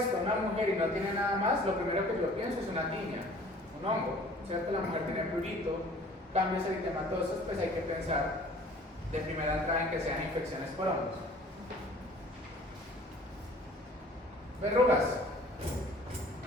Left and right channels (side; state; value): both; normal; correlation 0.50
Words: una mujer y no tiene nada más, lo primero que yo pienso es una tiña, un hongo, ¿cierto? La mujer tiene prurito, cambios eritematosos, pues hay que pensar de primera entrada en que sean infecciones por hongos. Verrugas.